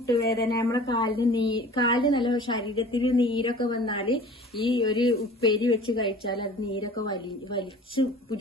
നമ്മളെ കാലിന് നല്ല ശരീരത്തിന് നീരൊക്കെ വന്നാല് ഈ ഒരു ഉപ്പേരി വെച്ച് കഴിച്ചാൽ അത് നീരൊക്കെ വലിച്ചു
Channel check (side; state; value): both; normal; correlation 0.44